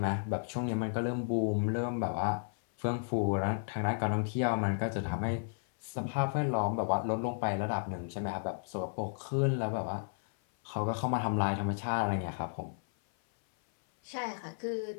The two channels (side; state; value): right; silent; 56 dB below the other